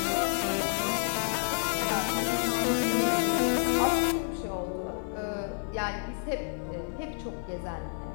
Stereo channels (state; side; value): silent; right; digital silence